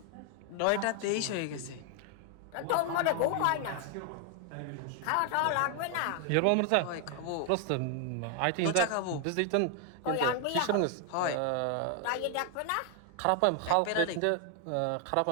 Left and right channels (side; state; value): both; different; correlation 0.00